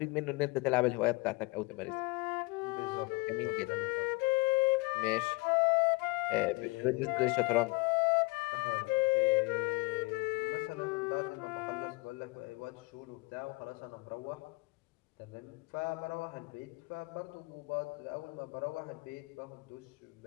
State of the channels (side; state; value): right; quieter; 25.2 dB